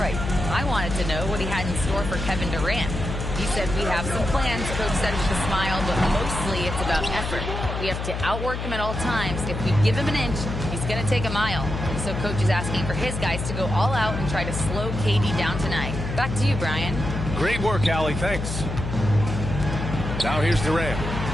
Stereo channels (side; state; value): left; noise; hum, 4 dB below the sound